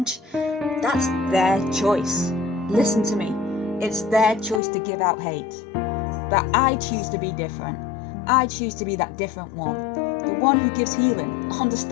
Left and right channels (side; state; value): right; drops out; at 4.6 s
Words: that's their choice. Listen to me. It's their choice to give out hate. But I choose to be different. I choose to be that different one. The one who gives healing,